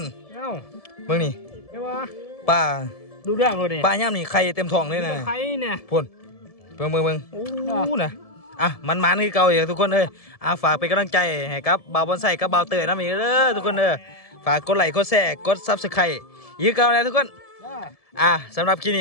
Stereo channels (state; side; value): late; right; 1.7 ms